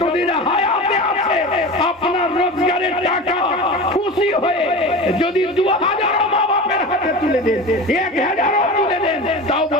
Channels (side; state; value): both; normal; correlation 0.31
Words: হায়াতে আছে আপনার রোজগারের টাকা খুশি হয়ে যদি 2000 মা বাপের হাতে তুলে দেন, 1000 তুলে দেন, তাও